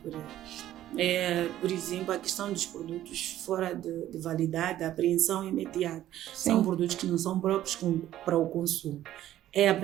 Por exemplo, a questão dos produtos fora de validade, a apreensão imediata. Sim. São produtos que não são próprios para o consumo. É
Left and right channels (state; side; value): quieter; left; 13.0 dB